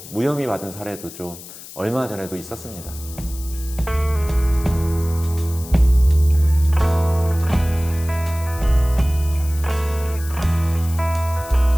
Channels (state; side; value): noise; left; hiss, 15 dB below the sound